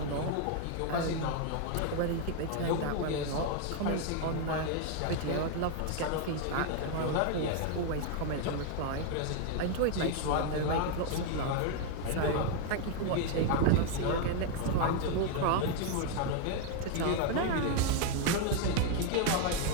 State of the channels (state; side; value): different; both; correlation 0.00